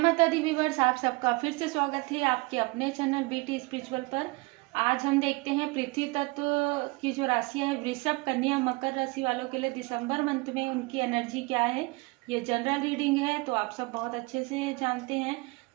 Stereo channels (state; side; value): quieter; left; 25.4 dB